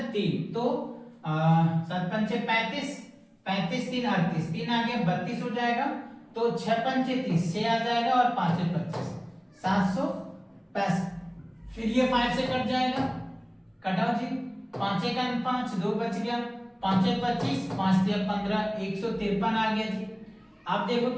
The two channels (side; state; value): both; identical; correlation 1.00